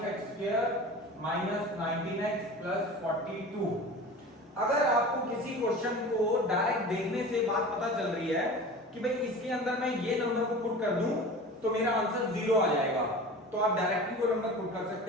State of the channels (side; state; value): both; normal; correlation 0.36